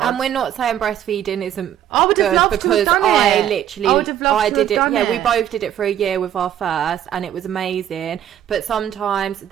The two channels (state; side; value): quieter; left; 10.8 dB